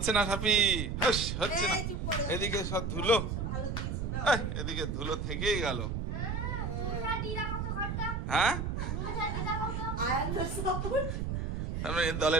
না, সাফি হচ্ছে না। এদিকে সব ধুলো, এদিকে ধুলো থেকেই গেল। হ্যাঁ,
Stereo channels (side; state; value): right; noise; rumble, 2 dB below the sound